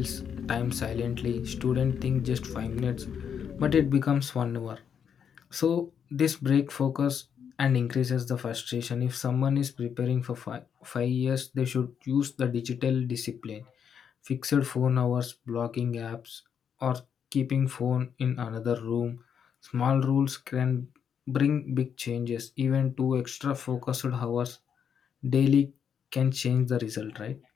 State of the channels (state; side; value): quieter; right; 7.7 dB